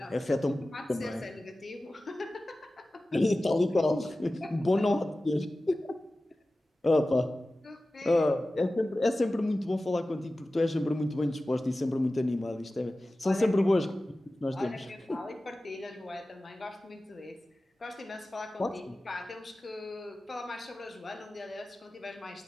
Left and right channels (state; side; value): normal; both; correlation 0.96